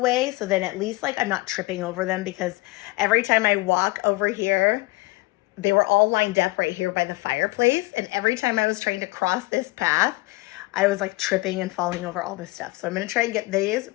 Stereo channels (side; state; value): right; quieter; 22.4 dB